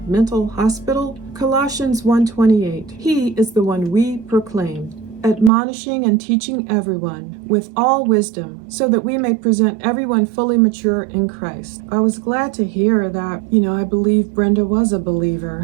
mental hospital? Colossians 1:28. He is the one we proclaim, admonishing and teaching everyone with all wisdom, so that we may present everyone fully mature in Christ. I was glad to hear that, I believe Brenda was a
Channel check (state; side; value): drops out; left; at 5.5 s